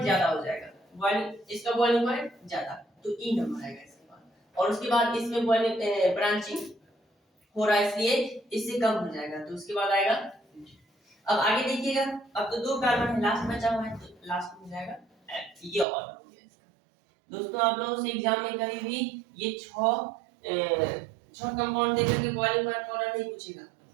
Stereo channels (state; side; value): drops out; left; at 15.9 s